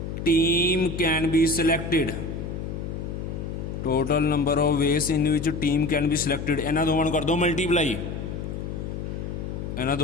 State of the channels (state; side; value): noise; left; hum, 6 dB below the sound